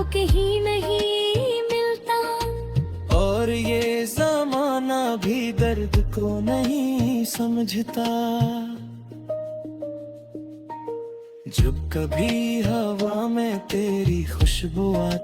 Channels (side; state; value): both; identical; correlation 1.00